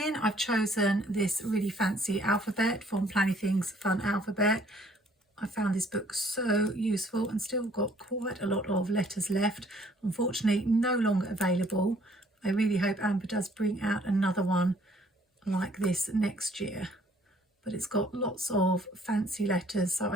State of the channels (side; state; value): both; normal; correlation 0.61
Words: I've chosen this really fancy alphabet from Plannything's Fun Alphabet. I found this book so useful and still got quite a lot of letters left. Unfortunately, no longer available. I really hope Amber does bring out another one like this next year. But it's got lots of fancy letters, so